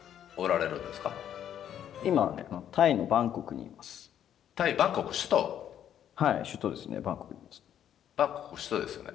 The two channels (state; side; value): quieter; right; 10.1 dB